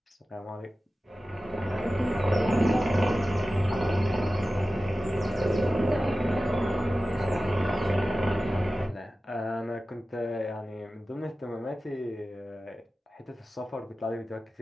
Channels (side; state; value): both; normal; correlation 0.95